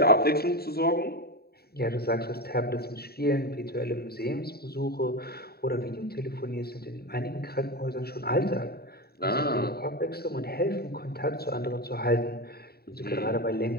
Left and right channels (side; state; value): right; late; 0.45 ms